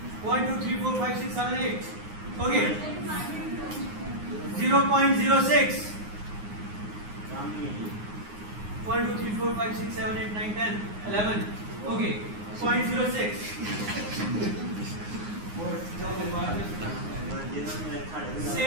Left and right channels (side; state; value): left; late; 9.6 ms